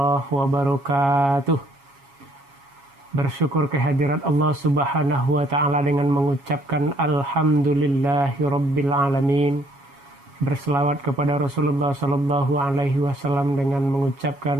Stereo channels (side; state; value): left; late; 7.2 ms